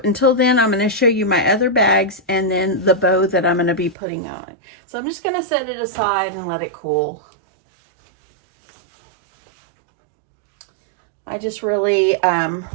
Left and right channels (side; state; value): left; drops out; at 4.0 s